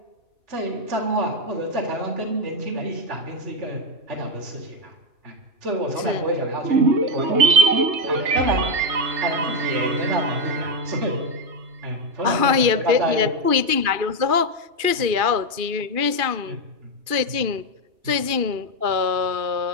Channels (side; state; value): left; late; 2.5 ms